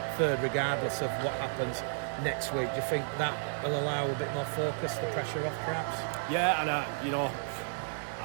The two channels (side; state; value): left; silent; digital silence